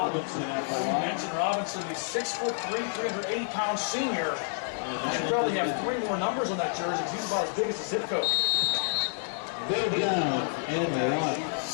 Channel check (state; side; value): silent; right; 59 dB below the other